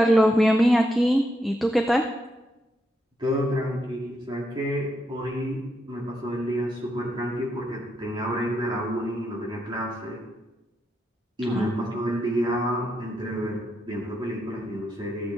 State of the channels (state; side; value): normal; both; correlation 0.81